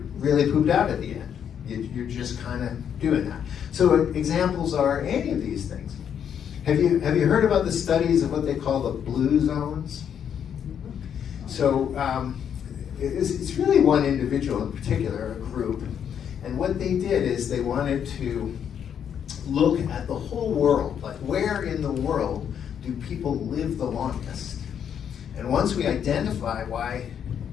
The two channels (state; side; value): quieter; right; 8.5 dB